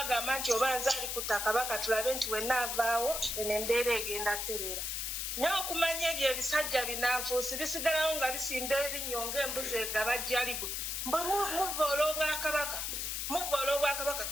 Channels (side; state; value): left; noise; hiss, 2 dB below the sound